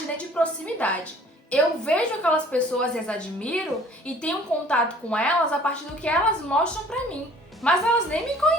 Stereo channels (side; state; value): both; normal; correlation 0.52